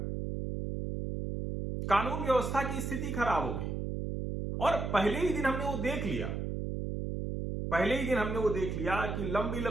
कानून व्यवस्था की स्थिति खराब होगी। और पहले ही दिन हमने वो देख लिया कि लंबी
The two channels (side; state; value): right; noise; hum, 3 dB below the sound